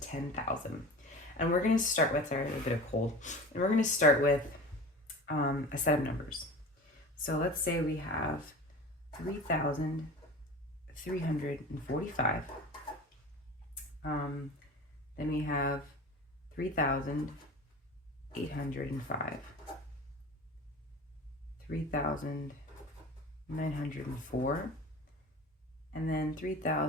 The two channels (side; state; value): both; normal; correlation 0.35